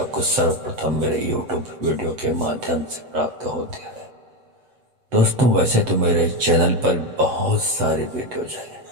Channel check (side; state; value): left; late; 7.9 ms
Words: सर्वप्रथम मेरे यूट्यूब वीडियो के माध्यम से प्राप्त होती है। दोस्तों, वैसे तो मेरे चैनल पर बहुत सारे वीडियोज हैं,